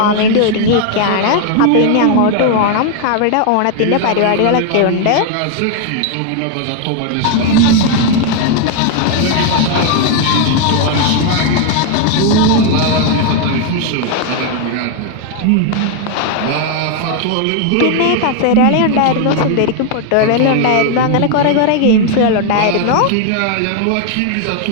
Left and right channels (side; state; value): both; different; correlation 0.00